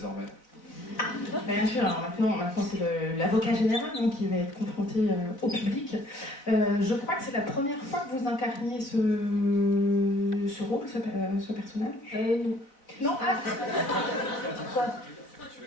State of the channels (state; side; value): late; right; 4.0 ms